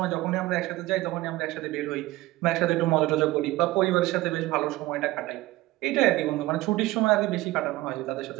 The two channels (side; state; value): left; quieter; 18.6 dB